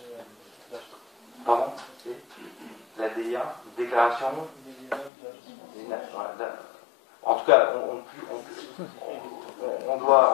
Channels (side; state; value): right; drops out; at 5.1 s